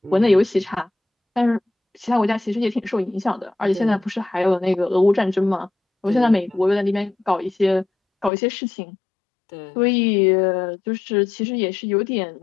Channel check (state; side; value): drops out; right; at 8.3 s